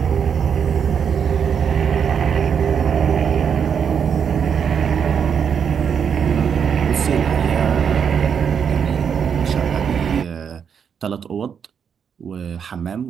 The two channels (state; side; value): quieter; left; 7.3 dB